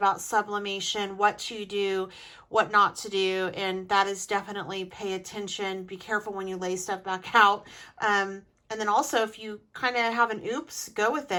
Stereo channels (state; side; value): identical; both; correlation 1.00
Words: sublimation, what to do, what not to do, and that is definitely pay attention. Be careful when you lay stuff back out. And then also, if you kind of have an oops, go with